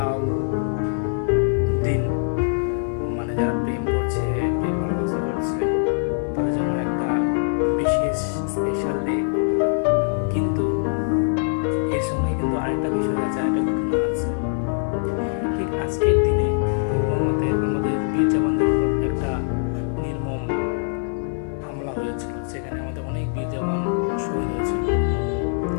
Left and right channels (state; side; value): silent; right; 60 dB below the other